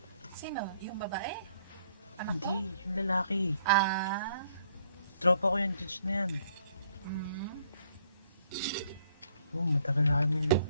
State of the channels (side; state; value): both; inverted; correlation -0.66